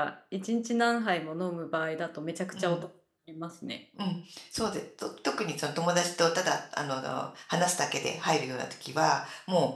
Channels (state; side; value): identical; both; correlation 1.00